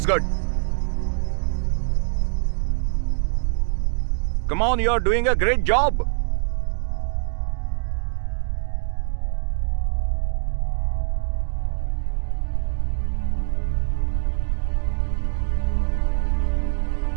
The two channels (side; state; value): left; silent; digital silence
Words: good. Come on, you're doing a great job.